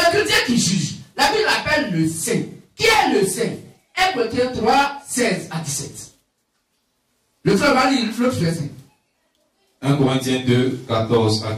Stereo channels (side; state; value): both; identical; correlation 1.00